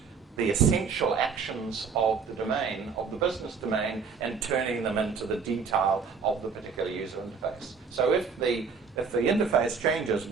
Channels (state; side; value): quieter; left; 5.6 dB